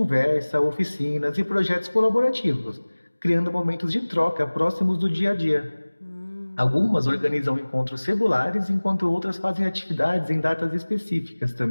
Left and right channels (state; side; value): inverted; both; correlation -1.00